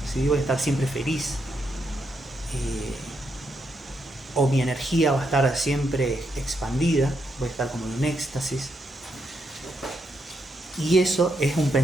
¿sí? Voy a estar siempre feliz. O mi energía va a estar siempre expandida, voy a estar como en un éxtasis. Y eso es un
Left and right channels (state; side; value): normal; both; correlation 0.80